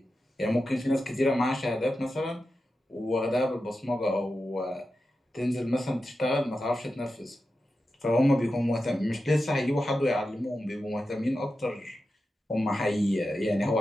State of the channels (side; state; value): both; normal; correlation 0.91